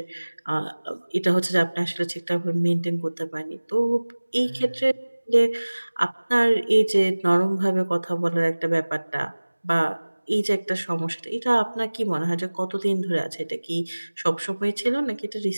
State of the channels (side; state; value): both; inverted; correlation -1.00